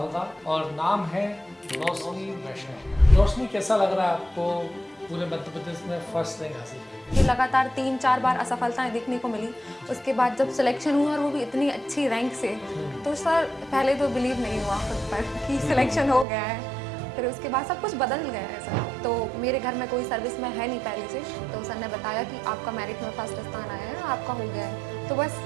और नाम है रोशनी वैष्णव। रोशनी, कैसा लग रहा है आपको पूरे मध्य प्रदेश में फर्स्ट रैंक हासिल करके? ये लगातार 3-4 बार असफलताएं देखने को मिली। उसके बाद जब सिलेक्शन हुआ और वो भी इतनी अच्छी रैंक से, तो सर पहले तो बिलीव नहीं हुआ खुद पर कि सिलेक्शन हो गया है। फिर उसके बाद सब कुछ बदल गया है सर। तो मेरे घर में कोई सर्विस में है नहीं पहले से, तो सर ने बताया कि आपका मेरिट में फर्स्ट स्थान आया है, आपका हो गया है। तो बस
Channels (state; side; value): drops out; left; at 16.2 s